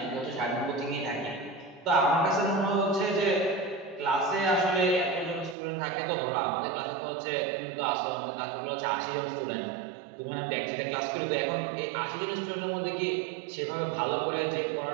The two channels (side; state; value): left; drops out; at 5.6 s